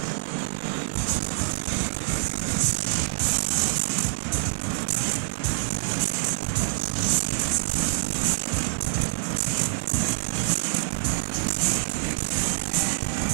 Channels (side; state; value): left; silent; digital silence